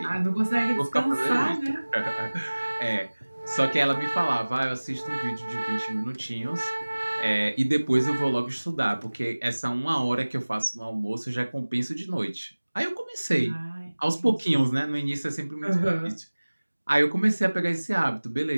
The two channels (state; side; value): inverted; both; correlation -1.00